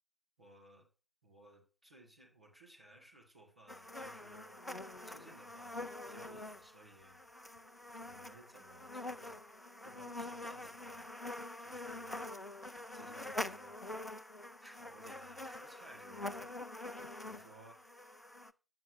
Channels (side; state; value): both; normal; correlation 0.61